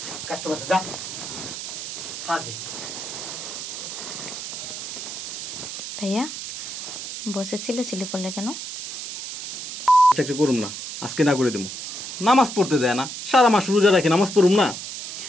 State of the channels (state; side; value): noise; right; hiss, 7 dB below the sound